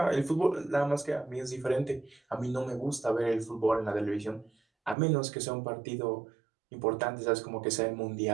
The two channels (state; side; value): drops out; left; at 5.0 s